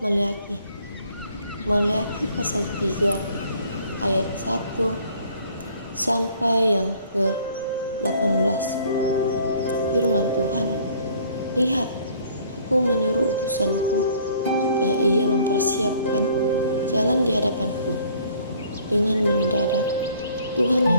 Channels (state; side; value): inverted; both; correlation -0.57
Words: pasal 3 ayat 1 sampai yang ke-18. Firman Tuhan, lihat, aku menyuruh utusanku supaya ia mempersiapkan jalan di hadapanku. Dengan mendadak Tuhan